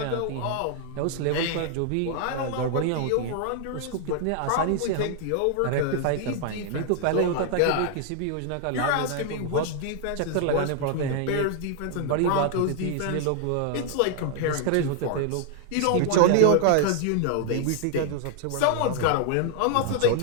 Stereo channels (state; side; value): different; both; correlation 0.00